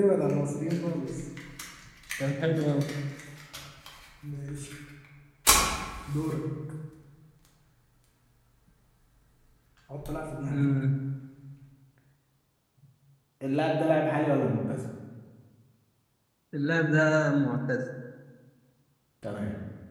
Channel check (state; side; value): identical; both; correlation 1.00